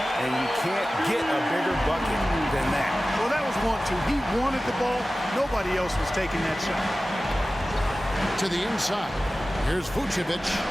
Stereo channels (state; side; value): normal; both; correlation 0.96